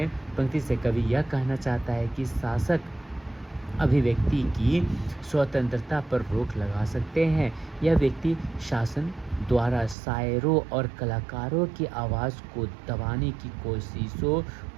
से कवि यह कहना चाहता है कि शासक अभिव्यक्ति की स्वतंत्रता पर रोक लगा सकते हैं। यह व्यक्ति शासन द्वारा शायरों और कलाकारों की आवाज़ को दबाने की कोशिशों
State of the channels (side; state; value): left; drops out; at 10.0 s